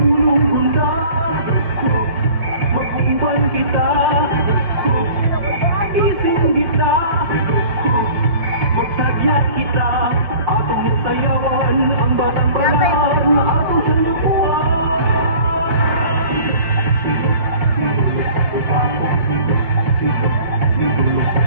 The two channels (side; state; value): left; late; 4.9 ms